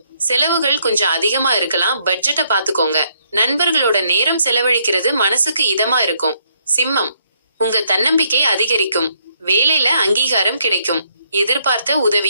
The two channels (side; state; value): both; inverted; correlation -0.71